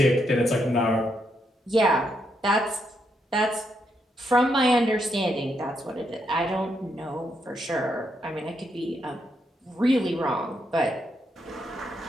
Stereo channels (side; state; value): both; normal; correlation 0.79